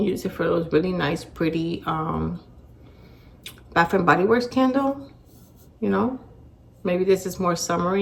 use it for those really nice, pretty Bath and Body Works candle, you know. Maybe this is more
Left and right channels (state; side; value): identical; both; correlation 1.00